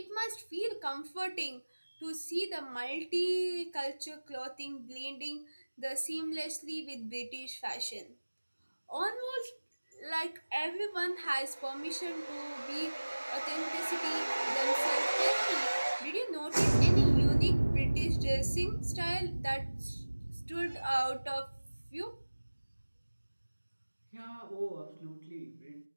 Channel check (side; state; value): both; inverted; correlation -1.00